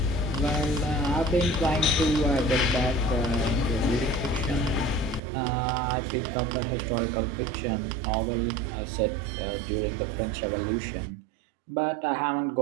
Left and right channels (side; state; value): left; drops out; at 5.2 s